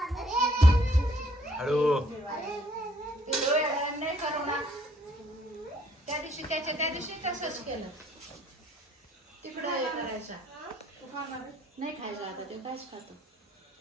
हळू. नाही करू ना. त्या दिवशी तसंच केलं. तिकडं हे करायचा. नाही खायचं आता ते कायच खातो.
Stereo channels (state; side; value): normal; both; correlation 0.64